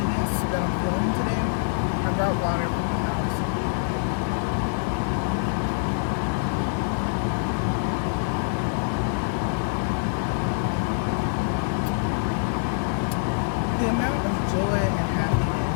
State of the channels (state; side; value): silent; right; digital silence